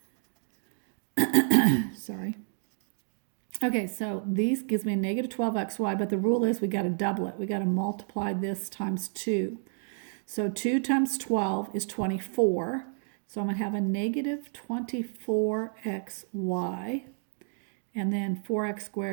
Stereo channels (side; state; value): left; silent; 58 dB below the other